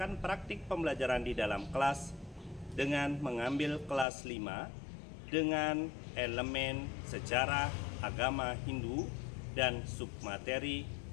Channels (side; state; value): right; drops out; at 4.0 s